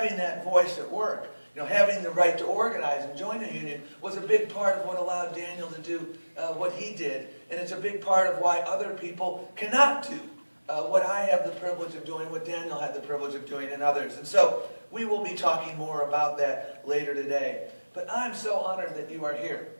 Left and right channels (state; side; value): inverted; both; correlation -1.00